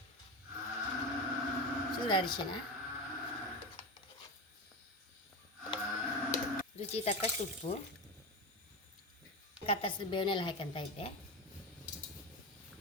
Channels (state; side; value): normal; both; correlation 0.20